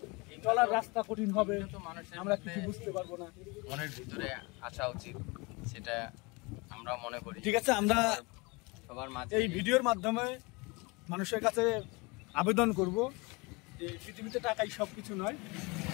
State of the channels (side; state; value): right; quieter; 27.0 dB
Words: চলার রাস্তা কঠিন হবে, আমরা কিছু বুঝতে পারবো না। মনের ভিতরে আসা উচিত, সেটা আমরা মনে করি। ঠিক আছে, আমরা সবার মাঝে এই ভিডিওর মাধ্যমে মানুষের কাছে আবেদন করব যে পৃথিবীতে টাকাই সবকিছু নয়,